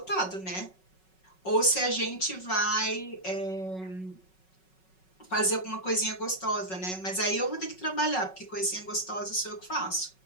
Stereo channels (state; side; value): late; right; 5.4 ms